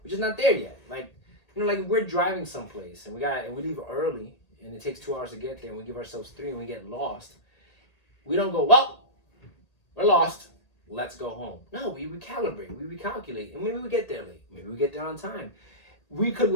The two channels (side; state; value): right; late; 1.8 ms